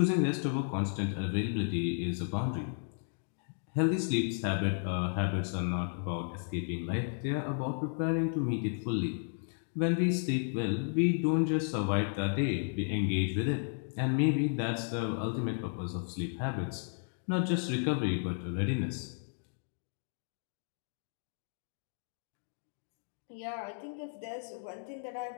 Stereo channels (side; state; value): right; silent; digital silence